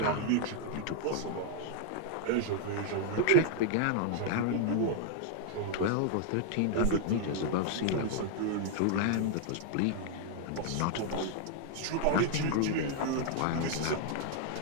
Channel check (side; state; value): both; different; correlation 0.00